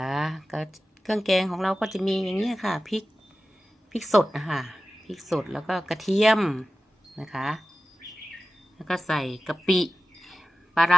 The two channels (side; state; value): both; normal; correlation 0.95